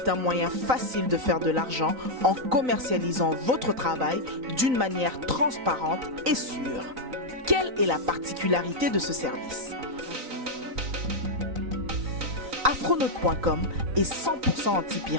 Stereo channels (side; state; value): left; late; 3.9 ms